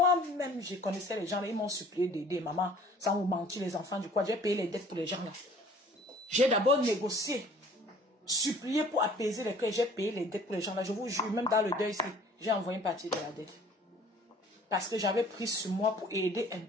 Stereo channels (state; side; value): normal; both; correlation 0.52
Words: je connaissais les gens là, ils m'ont supplié d'aider maman, sans vous mentir, les enfants du quoi. J'ai payé les dettes pour les gens là. J'ai d'abord négocié, supplié pour apaiser les cœurs, j'ai payé les dettes pour les gens là. Je vous jure, même dans le deuil ici, j'ai envoyé une partie de la dette. Parce que j'avais pris sur moi pour aider un